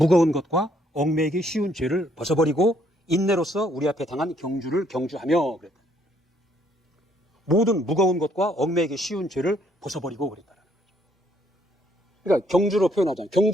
것과 얽매이기 쉬운 죄를 벗어버리고 인내로서 우리 앞에 당한 경주를 경주하며 그랬다. 모든 무거운 것과 얽매이기 쉬운 죄를 벗어버리고 그랬다는 거죠. 그러니까 경주로 표현하자면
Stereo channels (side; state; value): both; normal; correlation 0.68